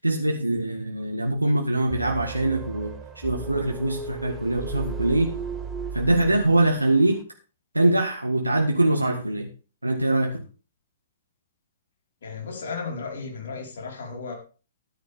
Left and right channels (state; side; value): inverted; both; correlation -0.86